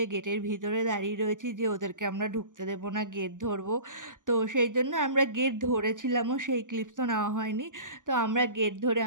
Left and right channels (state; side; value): late; left; 0.88 ms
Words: গেটের ভিতরে দাঁড়িয়ে রয়েছি যে ওদেরকে আমরা ঢুকতে দেবো না, গেট ধরবো। তো সেই জন্য আমরা গেট ধরেছিলামও, সেই ক্লিপস তো নেওয়া হয়নি। তো আমরা গেট ধরে